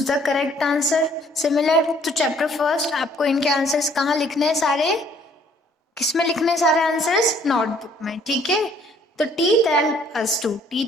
the correct answer. Similar to chapter first, आपको इनके आंसर्स कहाँ लिखने हैं? सारे किसमें लिखने हैं सारे आंसर्स? नोटबुक में, ठीक है। तो teeth help us to,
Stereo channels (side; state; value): both; normal; correlation 0.61